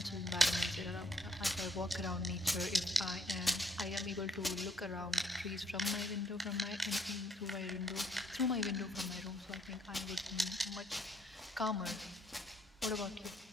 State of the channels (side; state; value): both; normal; correlation 0.68